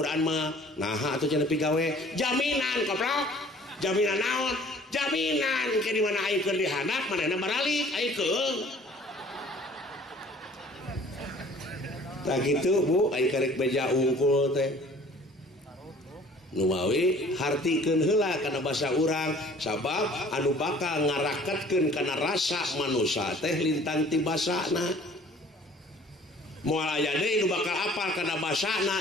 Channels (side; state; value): both; normal; correlation 0.52